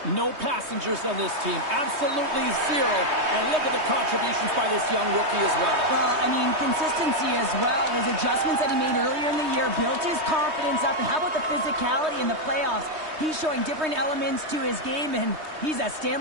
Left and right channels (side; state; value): left; late; 3.2 ms